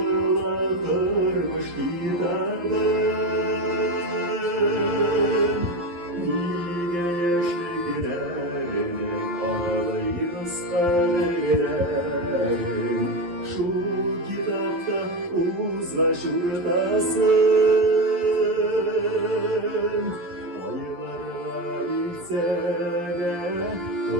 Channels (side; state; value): left; late; 11 ms